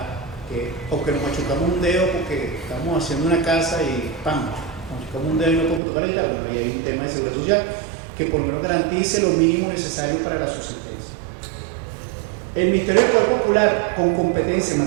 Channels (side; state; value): left; drops out; at 5.8 s